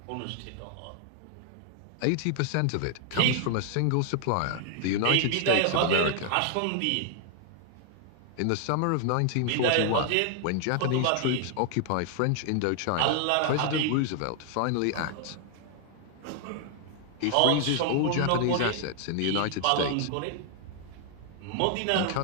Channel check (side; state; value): both; different; correlation 0.00